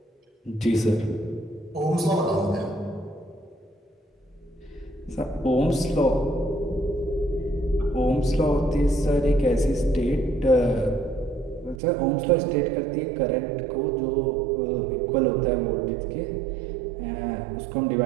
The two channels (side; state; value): left; drops out; at 11.8 s